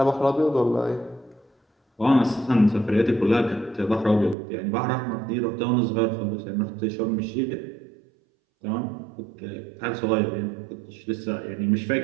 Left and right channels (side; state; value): left; drops out; at 4.4 s